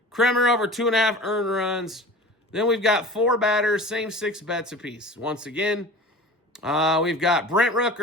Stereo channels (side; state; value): both; normal; correlation 0.38